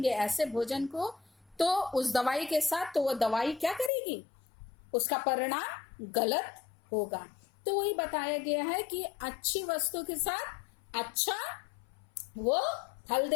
ऐसे भोजन को, तो उस दवाई के साथ, तो वो दवाई क्या करेगी, उसका परिणाम गलत होगा। तो वही बताया गया है कि अच्छी वस्तु के साथ अच्छा वो फल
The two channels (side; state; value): right; drops out; at 3.9 s